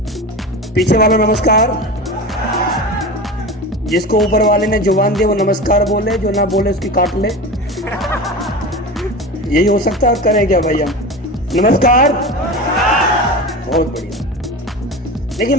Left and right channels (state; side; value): normal; both; correlation 0.29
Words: पीछे वाला नमस्कार। जिसको ऊपर वाले ने जुबान दी वो नमस्कार बोले, जो ना बोले उसकी काट ले। यही हो सकता है। करें क्या भैया? नमस्कार। बहुत बढ़िया। लेकिन